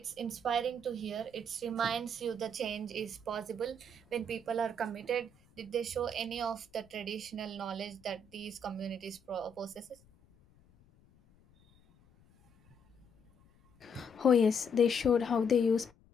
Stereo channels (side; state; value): left; noise; rumble, 29 dB below the sound